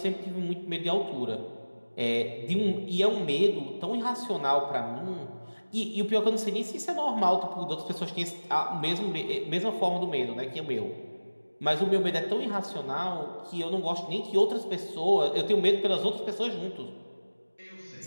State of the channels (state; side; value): inverted; both; correlation -1.00